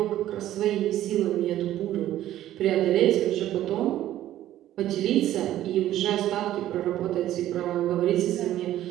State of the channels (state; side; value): quieter; left; 13.1 dB